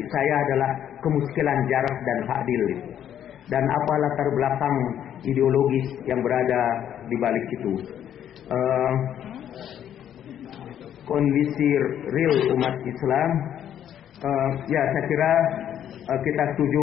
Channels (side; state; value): right; quieter; 10.1 dB